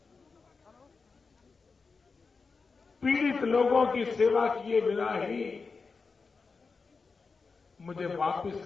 पीड़ित लोगों की सेवा किए बिना ही मुझे वापस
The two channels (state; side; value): quieter; right; 4.6 dB